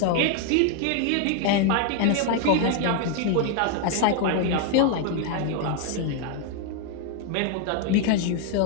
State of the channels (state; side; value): different; both; correlation 0.00